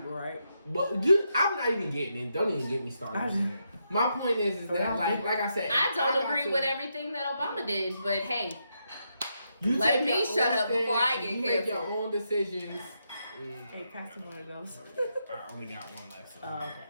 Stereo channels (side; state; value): both; inverted; correlation -0.82